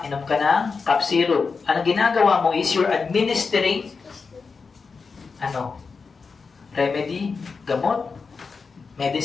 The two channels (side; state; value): right; quieter; 4.9 dB